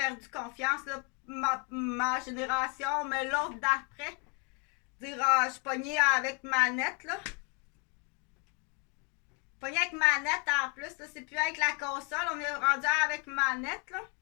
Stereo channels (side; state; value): right; quieter; 35.0 dB